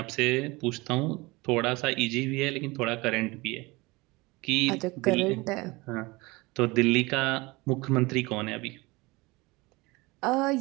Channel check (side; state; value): left; quieter; 23.3 dB